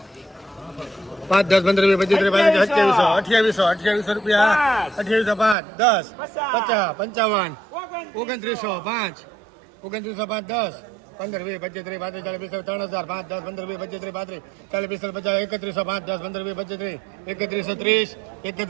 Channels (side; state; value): left; drops out; at 5.6 s